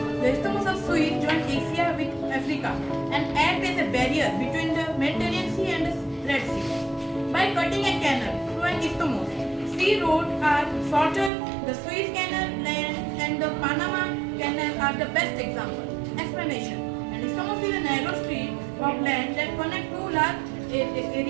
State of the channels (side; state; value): left; drops out; at 11.3 s